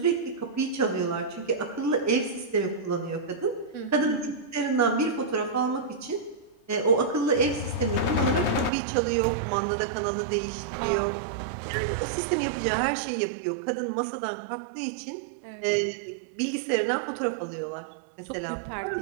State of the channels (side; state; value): left; drops out; at 8.7 s